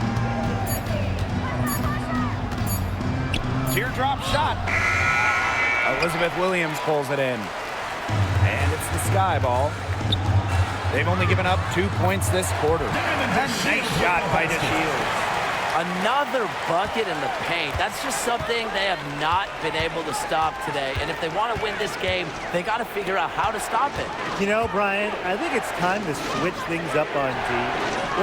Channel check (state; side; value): identical; both; correlation 1.00